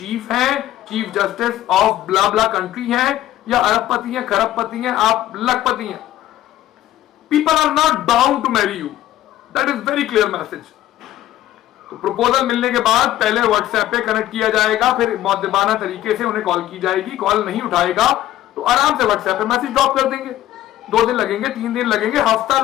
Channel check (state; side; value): quieter; right; 13.6 dB